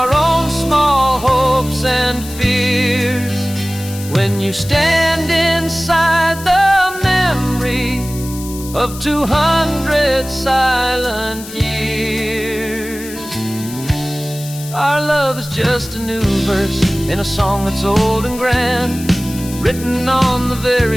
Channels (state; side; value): noise; left; hiss, 14 dB below the sound